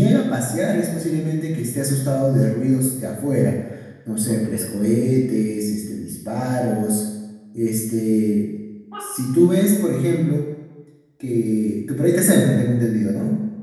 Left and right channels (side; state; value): both; identical; correlation 1.00